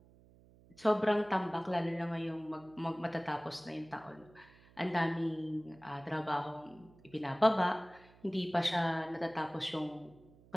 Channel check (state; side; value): noise; right; hum, 26 dB below the sound